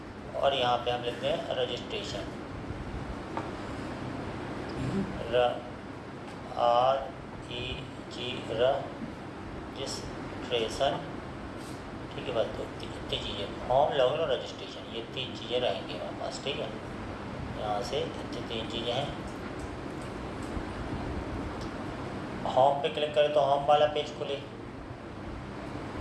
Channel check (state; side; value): identical; both; correlation 1.00